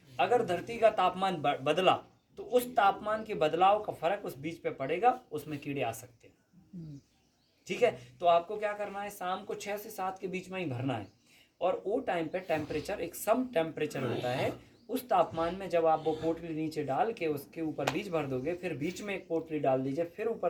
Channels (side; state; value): both; identical; correlation 1.00